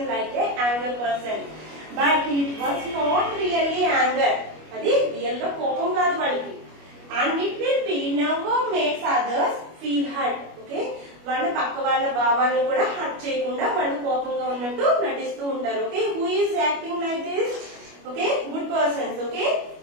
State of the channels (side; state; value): left; late; 25 ms